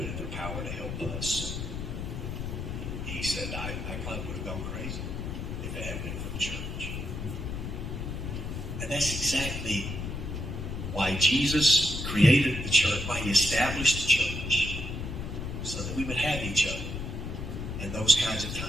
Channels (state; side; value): noise; left; rumble, 5 dB below the sound